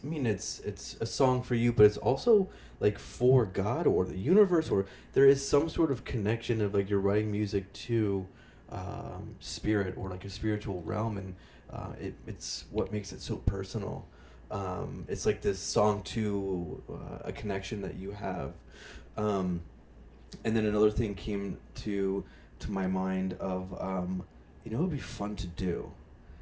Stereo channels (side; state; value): both; identical; correlation 1.00